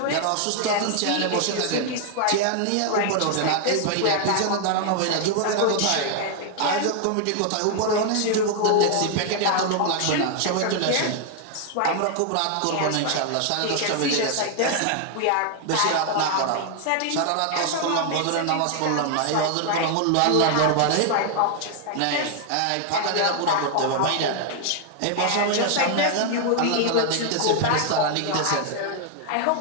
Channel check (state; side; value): different; both; correlation 0.00